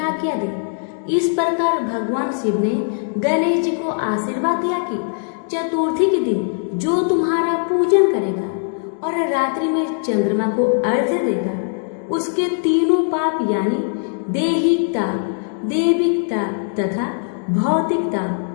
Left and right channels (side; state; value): right; silent; digital silence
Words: दी। इस प्रकार भगवान शिव ने गणेश जी को आशीर्वाद दिया कि चतुर्थी के दिन जो तुम्हारा पूजन करेगा और रात्रि में चंद्रमा को अर्घ्य देगा, उसके तीनों पाप यानी दैहिकता, दैविकता तथा भौतिकता